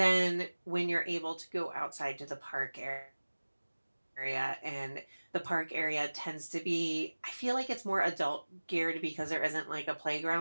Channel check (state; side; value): inverted; both; correlation -1.00